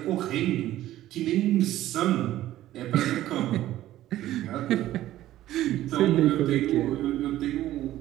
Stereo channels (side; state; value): left; quieter; 14.1 dB